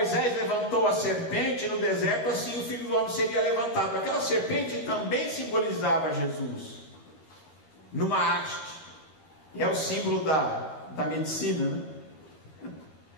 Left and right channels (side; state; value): right; late; 13 ms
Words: levantou a serpente no deserto, assim o Filho do Homem seria levantado. Aquela serpente também simbolizava Jesus, numa haste. E é o símbolo da medicina, né?